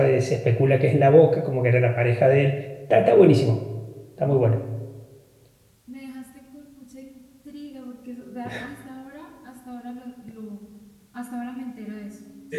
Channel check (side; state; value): both; identical; correlation 1.00